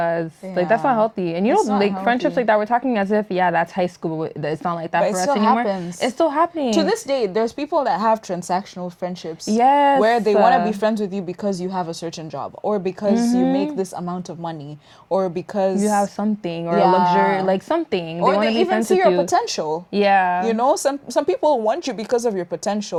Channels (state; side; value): identical; both; correlation 1.00